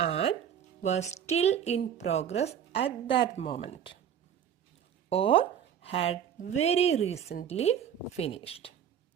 was still in progress at that moment or had very recently finished.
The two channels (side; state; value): left; quieter; 8.9 dB